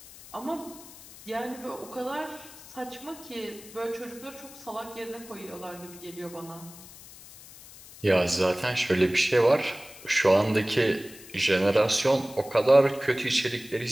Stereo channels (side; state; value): left; noise; hiss, 18 dB below the sound